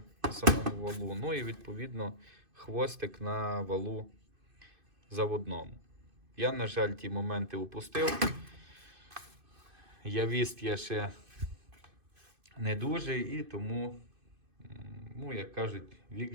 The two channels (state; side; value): late; left; 2.5 ms